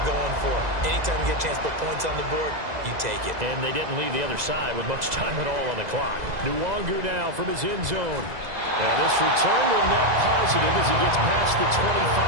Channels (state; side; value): late; left; 2.0 ms